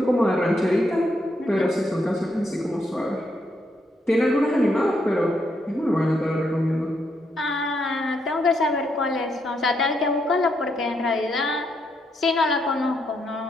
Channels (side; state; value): both; normal; correlation 0.78